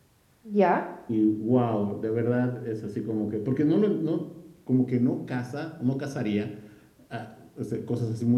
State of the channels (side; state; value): both; identical; correlation 1.00